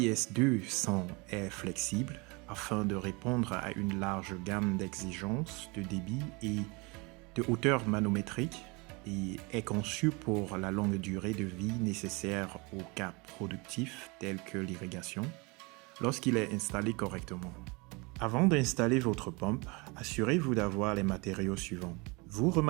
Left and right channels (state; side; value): quieter; left; 27.7 dB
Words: est flexible afin de répondre à une large gamme d'exigences de débit et de hauteur manométrique et est conçue pour la longue durée de vie nécessaire aux cas productifs tels que l'irrigation lorsqu'il est installé correctement. Avant d'installer votre pompe, assurez-vous d'avoir les matériaux suivants. Vous